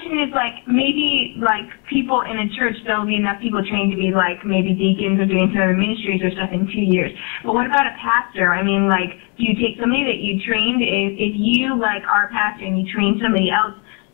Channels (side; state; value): right; quieter; 36.0 dB